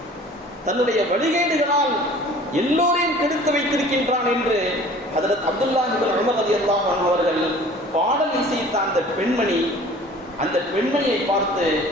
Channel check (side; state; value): both; normal; correlation 0.47